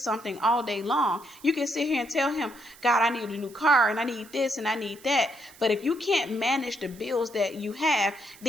all day long. You can sit here and tell him, God, I need a new car and I need this and I need that. But if you can't manage the bills that you have,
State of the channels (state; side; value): noise; right; hiss, 22 dB below the sound